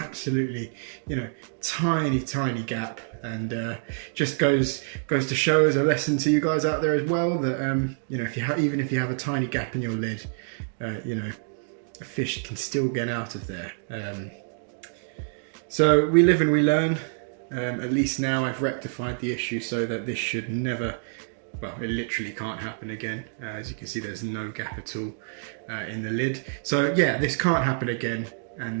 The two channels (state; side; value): silent; left; digital silence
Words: you know, tiny gap, and just goes to show as a lesson to you guys out there as well that you know, even if you have a tiny gap in your lid, you know, a fish can still get out of there. So we live and we learn. At least now I've rectified the issue so that this should never, well, it literally can't happen again. As you can see, there's no gap at all in the lid. So yeah, this can't happen again,